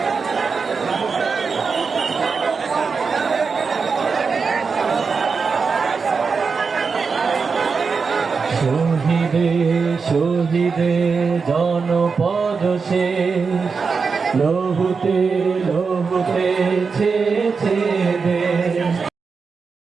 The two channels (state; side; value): quieter; left; 5.1 dB